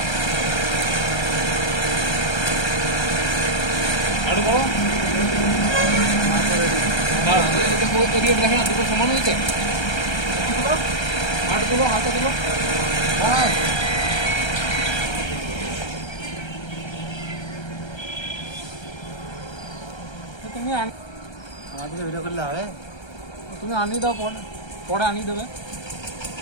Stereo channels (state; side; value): late; right; 1.3 ms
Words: আরো বলো এদিকে দেখে না দুটো সমান হয়েছে হাত তুলো হাতটা তুলো তুমি আমাদেরকে ভিডিও করলে হবে তুমি আনিয়ে দাও পরে পরে আনিয়ে দেবে